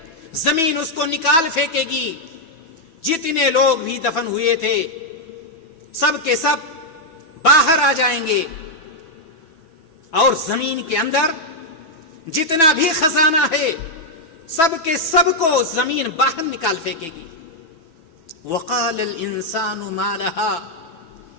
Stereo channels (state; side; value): late; right; 6.1 ms